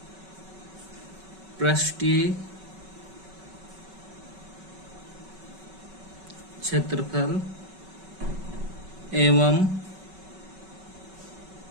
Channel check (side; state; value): left; late; 5.3 ms